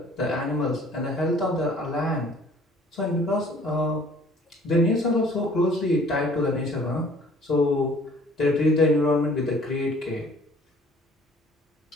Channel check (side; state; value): both; normal; correlation 0.54